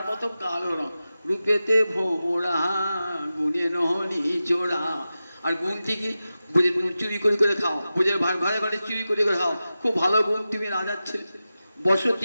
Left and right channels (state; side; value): inverted; both; correlation -0.93